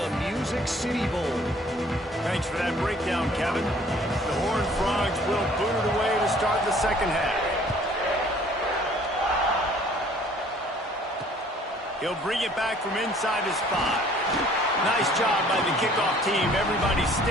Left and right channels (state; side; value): normal; both; correlation 0.56